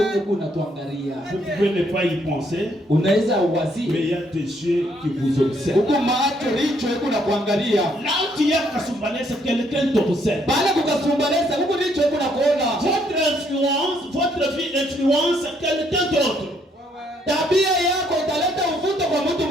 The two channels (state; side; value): normal; both; correlation 0.70